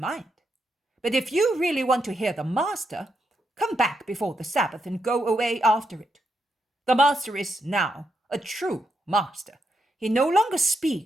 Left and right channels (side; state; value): both; normal; correlation 0.81